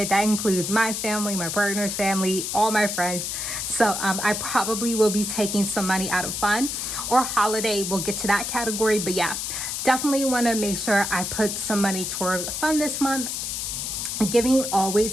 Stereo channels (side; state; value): left; noise; hiss, 3 dB below the sound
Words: That includes my family, my partner's family, all my friends. So I probably will be taking some money out of fun or holiday. We'll get to that category. But yeah, definitely want to make sure I put some money toward fun this month. Giving